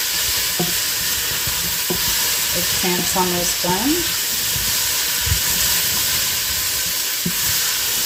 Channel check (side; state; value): both; identical; correlation 1.00